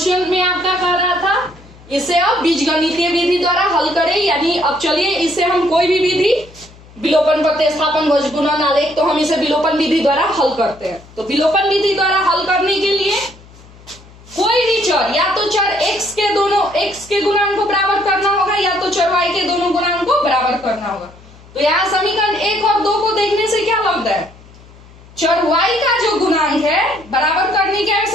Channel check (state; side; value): noise; left; hum, 23 dB below the sound